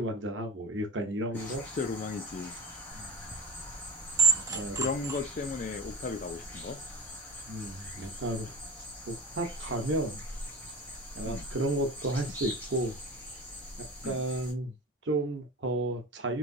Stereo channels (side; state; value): both; normal; correlation 0.33